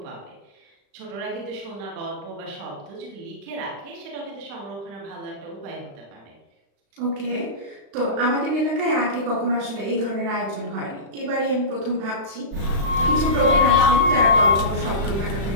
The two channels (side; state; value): left; late; 35 ms